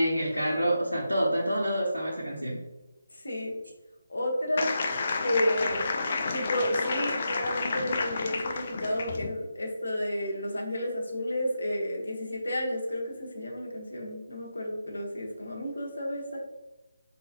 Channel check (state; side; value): inverted; both; correlation -0.86